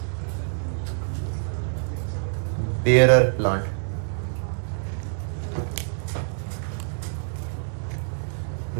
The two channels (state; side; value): silent; left; 59 dB below the other